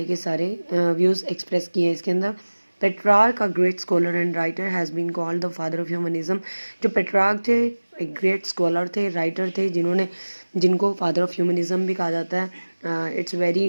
के सारे व्यूज़ एक्सप्रेस किए हैं इसके अंदर. Petrarch, a great scholar and writer, has been called the father of humanism. जो पेट्रार्क थे एक ग्रेट स्कॉलर थे, राइटर थे, जिनको फादर ऑफ ह्यूमनिज्म भी कहा जाता है. It's very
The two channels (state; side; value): inverted; both; correlation -1.00